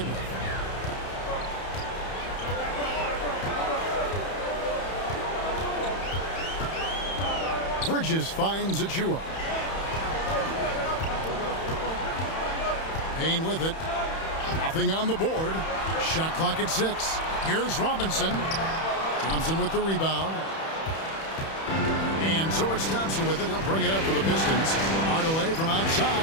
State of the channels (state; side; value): late; right; 31 ms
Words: with. Bridges finds Achua. Payne with it. Nothing on the board. Shot clock at 6. Here's Robinson. Thompson with the rebound. And so it's Thompson with it. He'll bring it up for the Pistons. Hardaway from